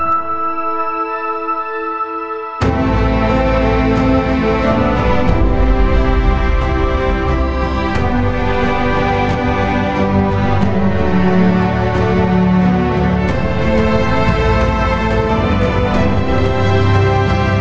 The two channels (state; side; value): identical; both; correlation 1.00